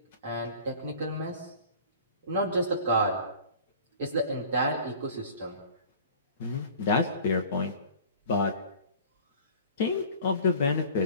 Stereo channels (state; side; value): inverted; both; correlation -0.44